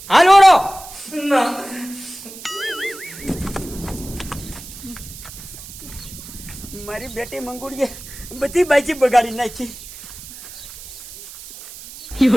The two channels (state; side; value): noise; right; hiss, 14 dB below the sound